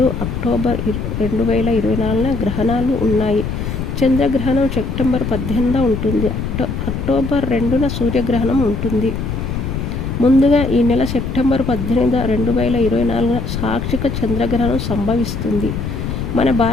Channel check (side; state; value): left; noise; rumble, 4 dB below the sound